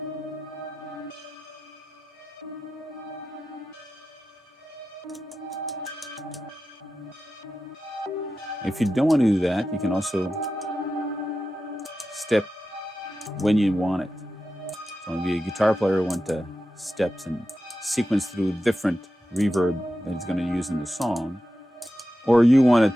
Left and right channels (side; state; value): both; normal; correlation 0.92